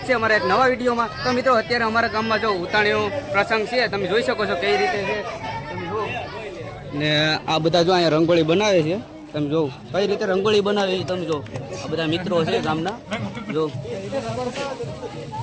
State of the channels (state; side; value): identical; both; correlation 1.00